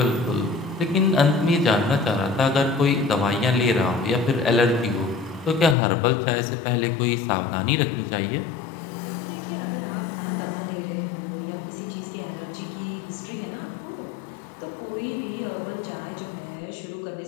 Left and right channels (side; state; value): right; drops out; at 5.8 s